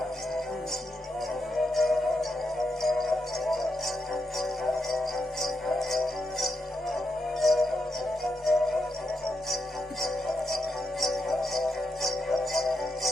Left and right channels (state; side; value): normal; both; correlation 0.83